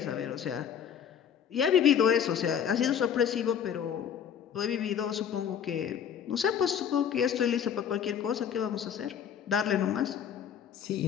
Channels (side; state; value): right; quieter; 8.5 dB